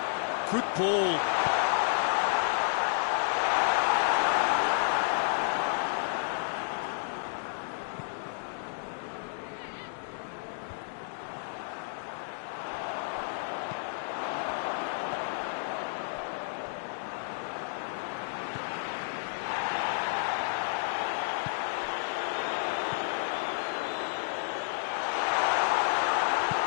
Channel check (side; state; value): right; silent; digital silence